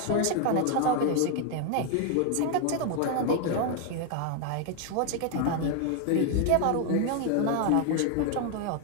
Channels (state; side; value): different; both; correlation 0.01